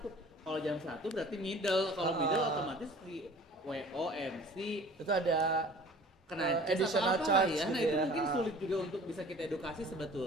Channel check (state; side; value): normal; both; correlation 0.47